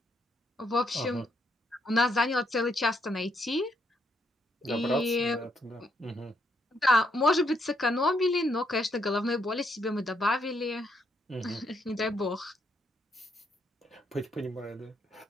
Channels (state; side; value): normal; both; correlation 0.75